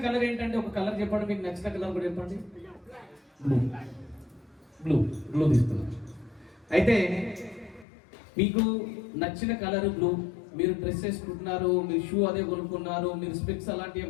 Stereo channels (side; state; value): right; drops out; at 7.9 s